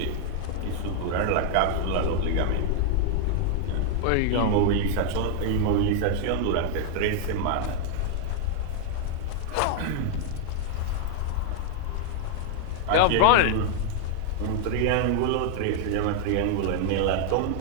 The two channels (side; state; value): both; different; correlation 0.00